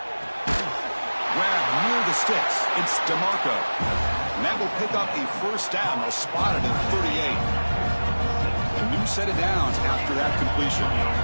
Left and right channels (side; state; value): both; inverted; correlation -1.00